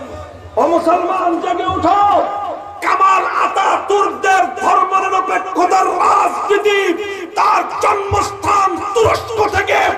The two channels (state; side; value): identical; both; correlation 1.00